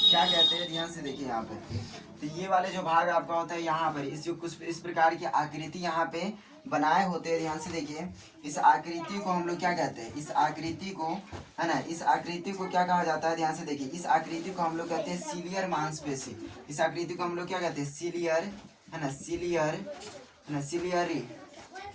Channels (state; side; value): identical; both; correlation 1.00